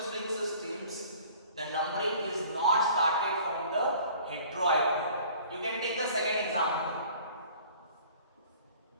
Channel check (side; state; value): both; inverted; correlation -0.50